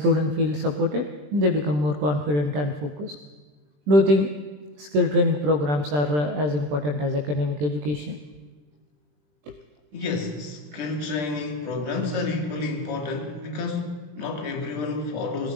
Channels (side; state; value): left; late; 20 ms